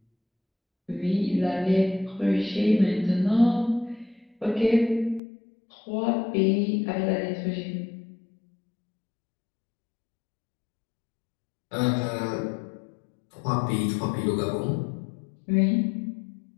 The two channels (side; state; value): right; drops out; at 5.2 s